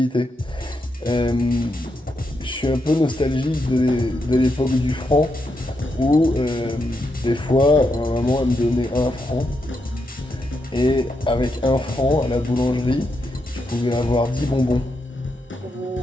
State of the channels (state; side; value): normal; both; correlation 0.83